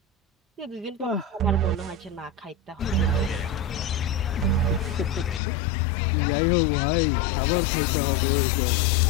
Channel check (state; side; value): drops out; right; at 5.4 s